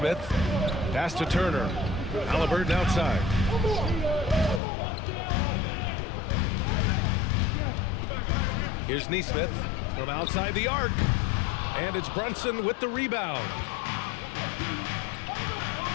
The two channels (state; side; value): drops out; right; at 4.6 s